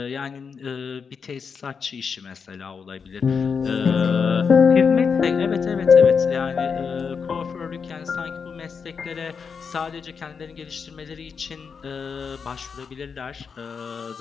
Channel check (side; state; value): right; quieter; 5.9 dB